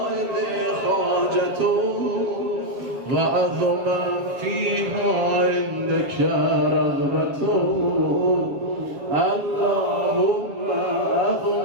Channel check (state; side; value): late; left; 7.5 ms